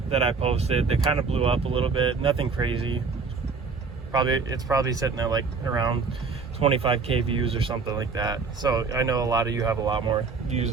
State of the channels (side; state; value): left; quieter; 4.7 dB